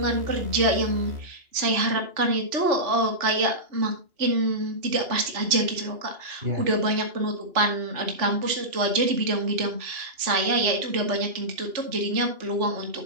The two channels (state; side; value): late; left; 2.8 ms